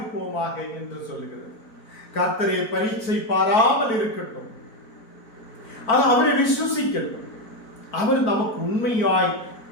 என்று சொல்லுகிறது. கர்த்தரை பரீட்சை பாராமல் இருக்கட்டும், அவரை விசுவசிக்கட்டும். அவர் நமக்கு உண்மையாய்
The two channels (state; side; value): late; right; 4.5 ms